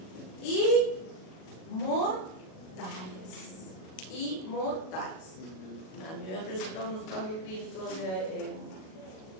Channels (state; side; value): late; right; 37 ms